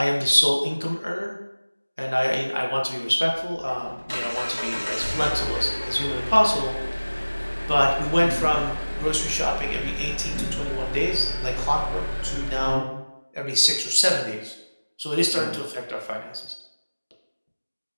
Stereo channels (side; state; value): both; inverted; correlation -1.00